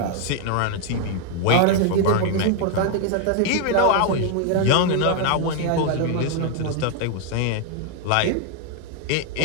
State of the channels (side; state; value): both; different; correlation 0.00